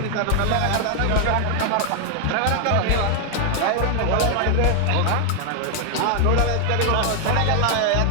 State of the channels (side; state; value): both; different; correlation 0.00